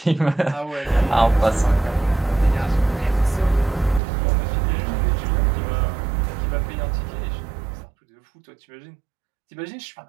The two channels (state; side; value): drops out; left; at 4.0 s